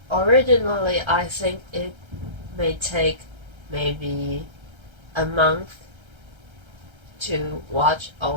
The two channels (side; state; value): left; late; 1.3 ms